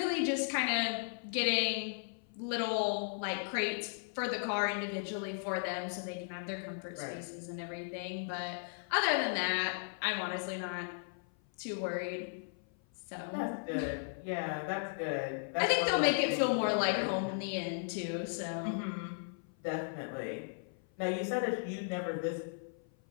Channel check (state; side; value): silent; right; 54 dB below the other